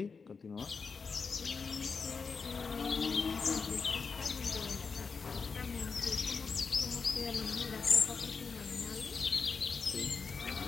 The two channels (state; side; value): quieter; right; 5.1 dB